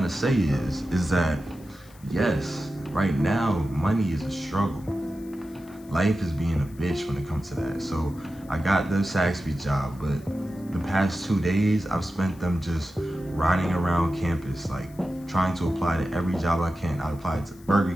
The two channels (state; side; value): noise; left; hiss, 26 dB below the sound